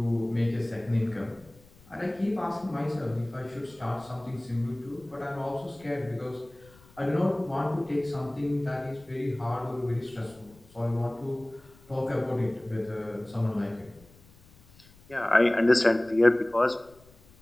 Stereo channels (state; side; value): noise; left; rumble, 26 dB below the sound